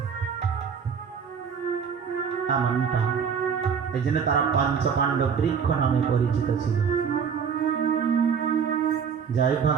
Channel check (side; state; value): left; quieter; 6.7 dB